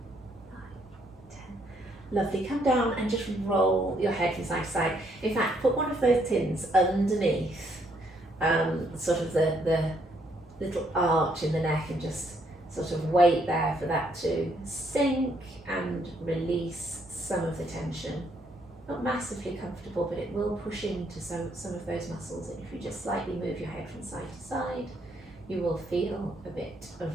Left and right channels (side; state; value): both; normal; correlation 0.71